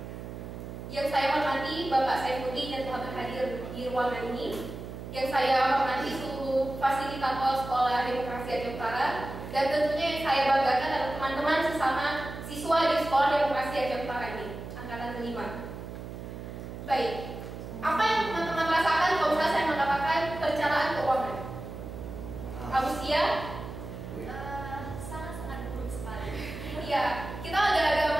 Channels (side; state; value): right; noise; hum, 10 dB below the sound